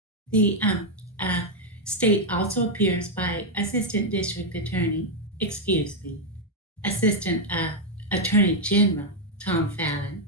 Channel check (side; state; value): both; normal; correlation 0.00